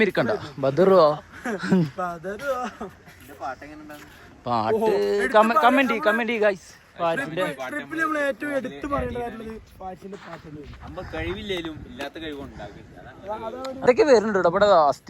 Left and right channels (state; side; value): identical; both; correlation 1.00